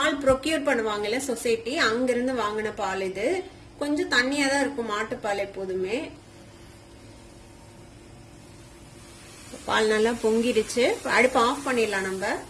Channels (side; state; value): both; identical; correlation 1.00